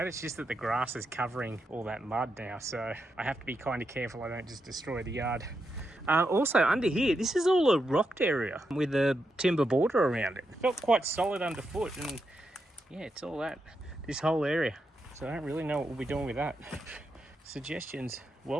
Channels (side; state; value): both; normal; correlation 0.85